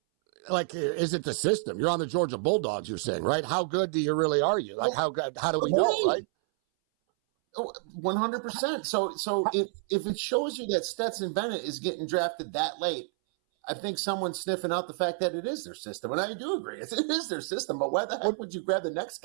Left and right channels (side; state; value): left; silent; 58 dB below the other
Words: like, is it the system? You're on the Georgia Bulldogs, you're saying, right? How good are you? Like, how do we know, right? 100%. So if it shows you that Stetson Bennett is getting drafted that late, I think someone's sniffing out the fact that it is their system. And I do agree. It is their system, but why the heck would you grab the next